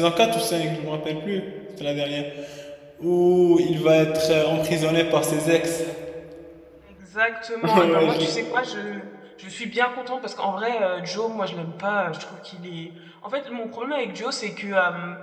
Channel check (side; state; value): both; identical; correlation 1.00